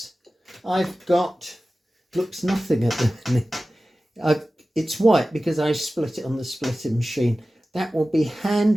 I've got, looks nothing at the minute. It's white because I split it on the splitting machine. That will be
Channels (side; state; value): both; normal; correlation 0.96